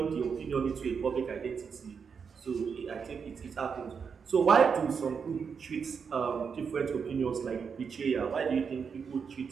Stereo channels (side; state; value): left; quieter; 6.2 dB